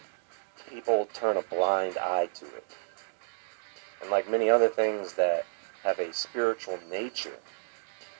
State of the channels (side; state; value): left; silent; digital silence